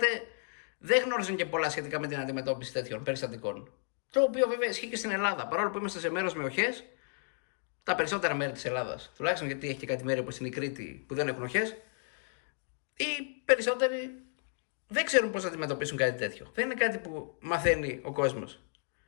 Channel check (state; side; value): silent; right; 56 dB below the other